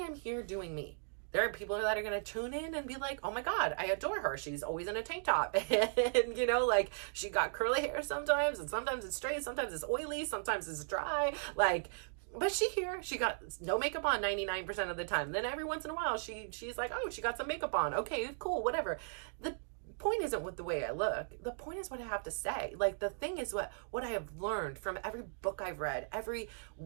here doing me. There are people that are going to tune in and be like, oh my God, I adore her. She's always in a tank top. And, like, she got curly hair sometimes, and sometimes it's straight, sometimes it's oily, sometimes it's dry. Like, but she got no makeup on 99% of the time. Then every once in a while, she's like, oh, she got some makeup on. Okay, cool, whatever. The point isn't with the way I look. The point is what I have to say. Like, the thing is what I have learned from every book I've read, every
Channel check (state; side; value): silent; left; digital silence